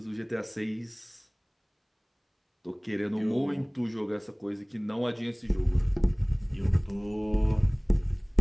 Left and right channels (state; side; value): identical; both; correlation 1.00